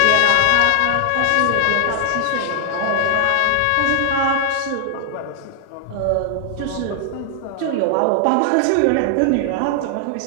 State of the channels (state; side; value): different; both; correlation 0.00